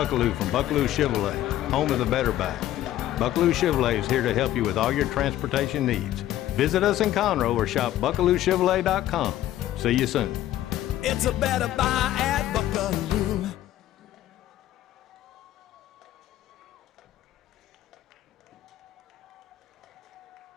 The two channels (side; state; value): right; quieter; 13.4 dB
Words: from Buckaloo Chevrolet, home of the Better Buy. Buckaloo Chevrolet is here to help you with all your transportation needs. Visit us in Conroe or shop BuckalooChevrolet.com. See you soon. It's a better buy at Buckaloo.